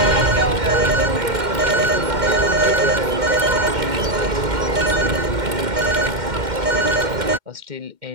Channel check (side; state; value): left; late; 2.1 ms